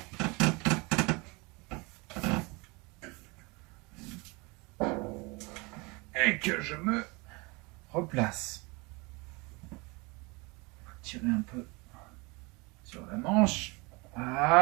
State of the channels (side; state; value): left; quieter; 27.0 dB